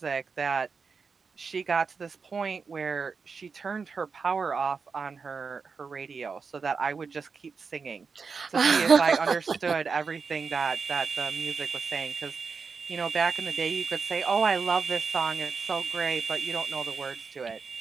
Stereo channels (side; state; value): left; quieter; 5.2 dB